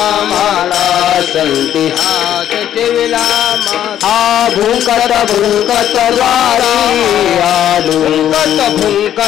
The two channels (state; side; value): quieter; right; 10.9 dB